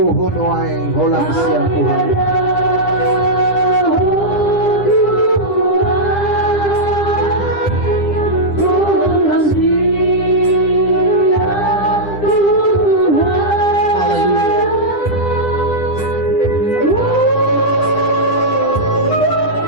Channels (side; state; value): right; late; 10 ms